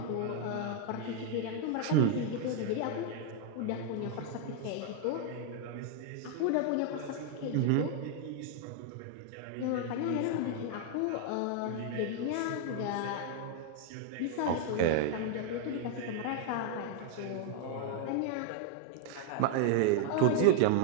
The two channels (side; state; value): both; different; correlation 0.00